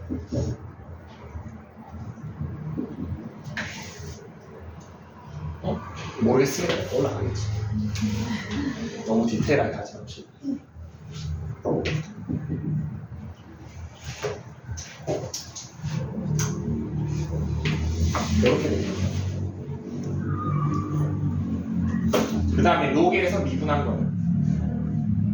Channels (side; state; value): both; identical; correlation 1.00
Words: 모르겠으면 올라가겠지. 너무 디테일하게 하지 맙시다. 이렇게 됩니다. 그 다음에 요게에서 미분한